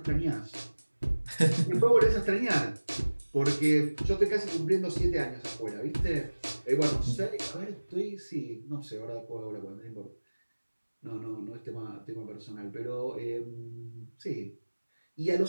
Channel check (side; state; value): both; inverted; correlation -1.00